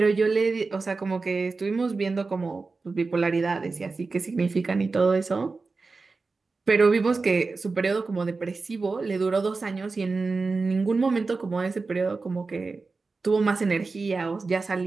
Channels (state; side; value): quieter; left; 4.0 dB